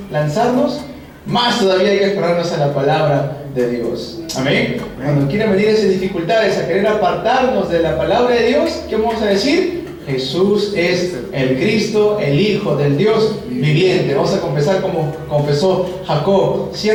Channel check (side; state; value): both; identical; correlation 1.00